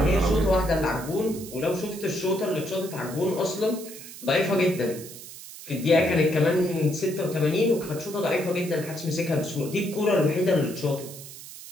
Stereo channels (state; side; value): noise; right; hiss, 14 dB below the sound